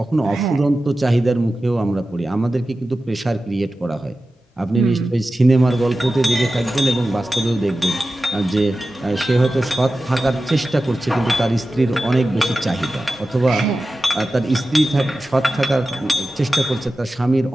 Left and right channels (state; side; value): normal; both; correlation 0.94